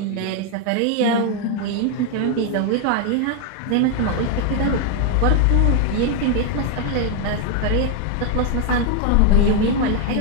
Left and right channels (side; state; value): both; different; correlation 0.01